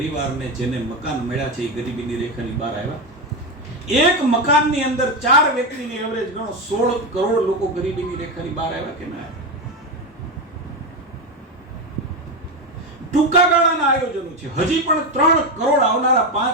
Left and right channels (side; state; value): both; normal; correlation 0.13